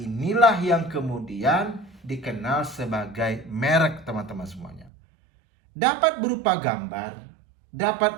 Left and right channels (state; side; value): drops out; left; at 4.9 s